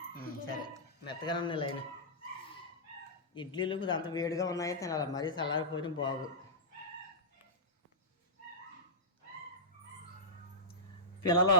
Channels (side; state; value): both; normal; correlation -0.10